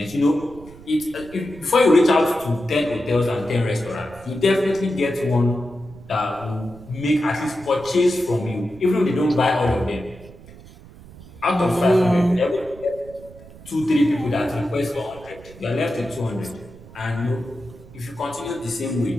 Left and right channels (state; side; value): noise; right; rumble, 20 dB below the sound